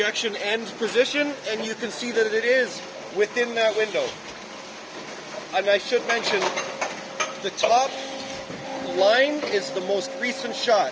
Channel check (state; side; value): identical; both; correlation 1.00